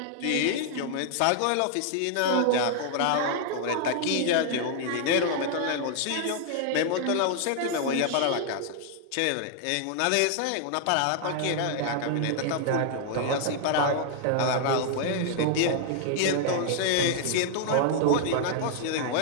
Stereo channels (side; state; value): both; different; correlation 0.00